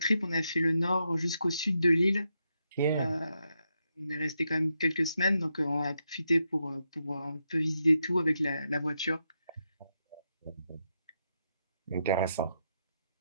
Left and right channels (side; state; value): both; inverted; correlation -0.83